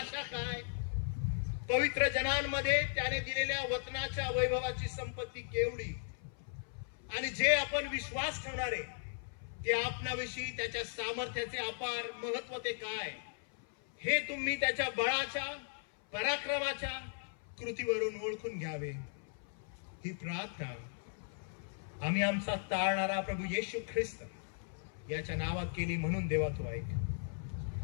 काय, पवित्र जनांमध्ये त्याने दिलेल्या वचनाच्या वैभवाची संपत्ती केवढी, आणि जे आपण विश्वास ठेवणारे ते आपणाविषयी त्याच्या सामर्थ्याचे अपार महत्व ते काय, हे तुम्ही त्याच्या बळाच्या, पराक्रमाच्या कृतीवरून ओळखून घ्यावे. ही प्रार्थना आम्ही आमचा तारणारा प्रभू येशू ख्रिस्त याच्या नावात केली, म्हणून देवा तू ऐक.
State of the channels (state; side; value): silent; right; 53 dB below the other